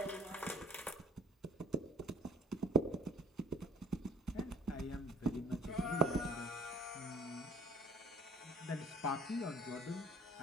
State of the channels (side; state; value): both; normal; correlation 0.49